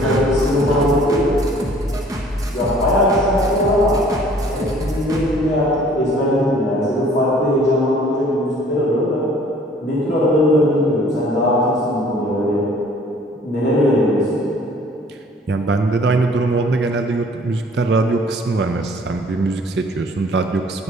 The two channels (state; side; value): normal; both; correlation 0.55